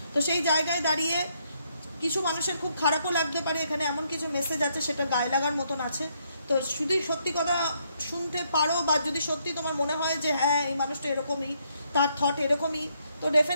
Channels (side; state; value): both; inverted; correlation -0.74